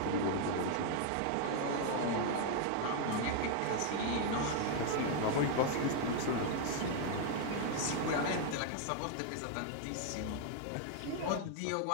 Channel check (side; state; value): both; different; correlation 0.00